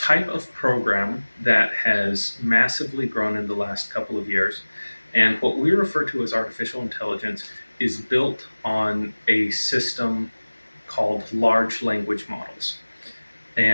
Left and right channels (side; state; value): both; inverted; correlation -1.00